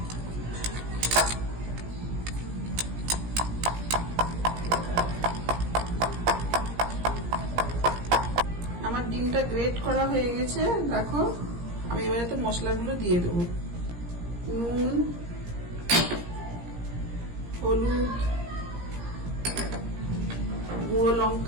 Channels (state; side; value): late; left; 17 ms